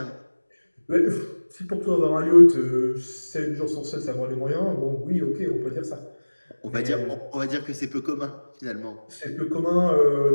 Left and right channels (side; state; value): both; inverted; correlation -1.00